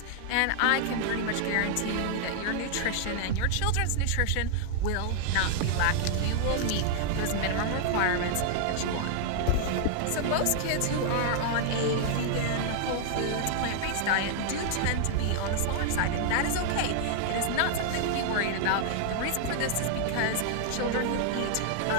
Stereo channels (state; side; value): different; both; correlation 0.00